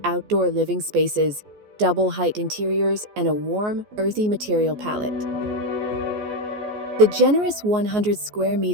outdoor living spaces, double-height interiors, and a warm, earthy material palette. The generous 100 square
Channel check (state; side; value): late; left; 14 ms